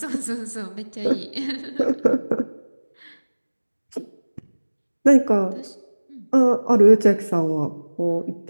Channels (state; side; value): inverted; both; correlation -1.00